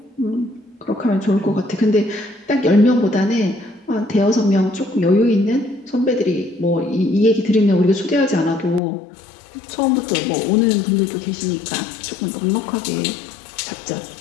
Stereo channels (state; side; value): drops out; right; at 8.8 s